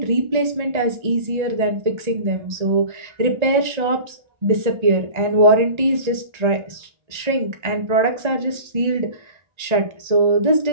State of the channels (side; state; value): left; late; 1.3 ms